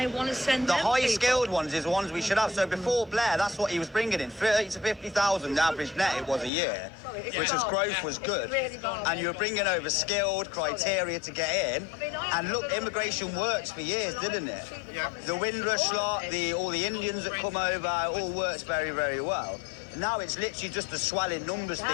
want to send the them high-skilled ones is the ones we should have. So before Blair, that's what he was bringing in, 30 to 50,000 average net it was a year, which as growth was good. And you were bringing over skilled criteria to get in. And look, immigration works for years, didn't it? The Windrush lot, all the Indians that come over, it all works very, very well. Now it's literally just the swelling numbers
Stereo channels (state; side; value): drops out; right; at 6.5 s